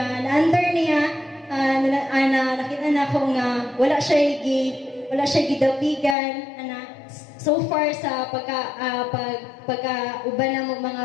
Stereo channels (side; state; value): right; drops out; at 6.2 s